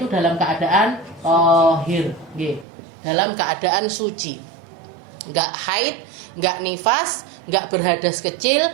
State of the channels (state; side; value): drops out; left; at 2.7 s